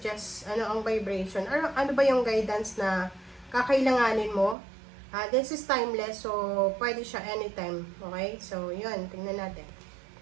ano ang vibration, ano ba yung guidance na kakailanganin mo. This is timeless, so pwede siya anytime. Okay? So, yun. Tingnan natin.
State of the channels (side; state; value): left; drops out; at 4.5 s